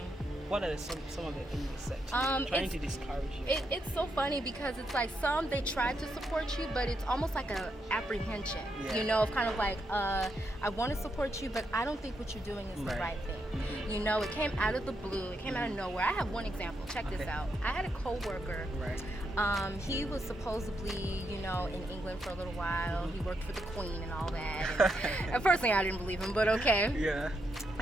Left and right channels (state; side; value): normal; both; correlation 0.81